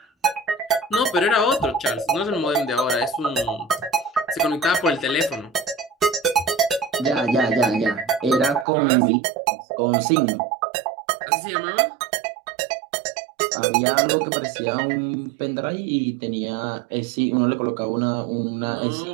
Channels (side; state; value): left; drops out; at 8.7 s